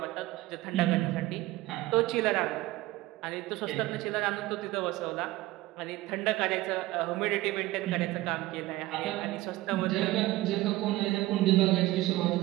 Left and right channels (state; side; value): quieter; left; 17.8 dB